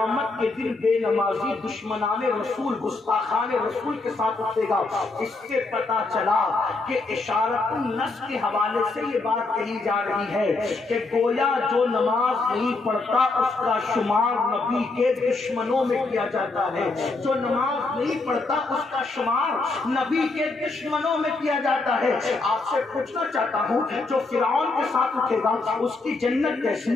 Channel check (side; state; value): right; quieter; 3.5 dB